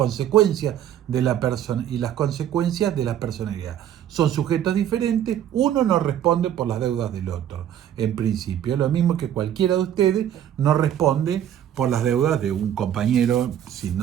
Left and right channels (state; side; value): quieter; left; 10.5 dB